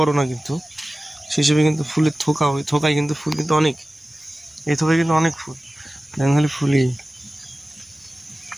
না, কিন্তু সেই হিসেবে কিন্তু ফুলের থোকা, ওই থোকায় কিন্তু ফুল কিন্তু অনেক, এই থোকায় কিন্তু অনেক ফুল। দেখুন খালি ফুলই,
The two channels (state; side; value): normal; both; correlation 0.96